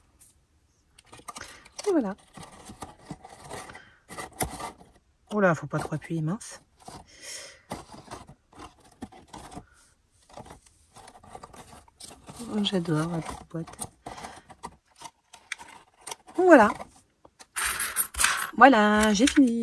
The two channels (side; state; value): both; identical; correlation 1.00